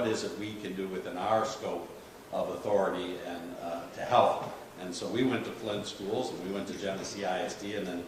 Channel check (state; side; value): identical; both; correlation 1.00